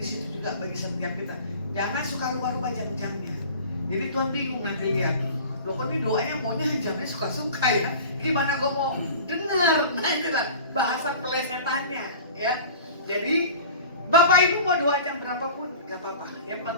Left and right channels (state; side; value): inverted; both; correlation -0.40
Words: situ juga bagi setiap kita. Jangan suka rubah-rubah jam-jamnya. Jadi Tuhan bingung nanti lihat. Loh kok ini doanya maunya jamnya suka-suka ya. Gimana gue mau dengar? Nah itulah bahasa pelesetannya ya. Jadi Bapak Ibu mau doa jam berapapun gak apa-apa. Yang